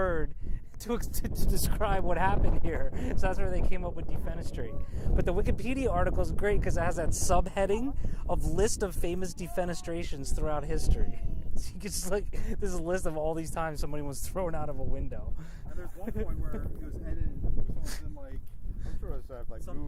to describe what happened here. So that's where they came up with defenestrate. But the Wikipedia article is great because it has that subheading of list of famous defenestrations throughout history. So you can just like, there's a list of all these times somebody was thrown out of a window. And there's one point where it was edited, someone's been like, like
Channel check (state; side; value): identical; both; correlation 1.00